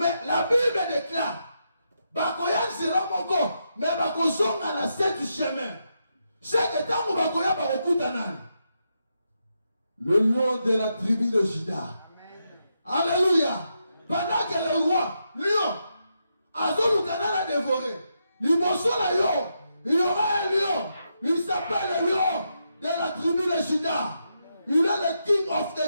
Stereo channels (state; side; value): inverted; both; correlation -0.83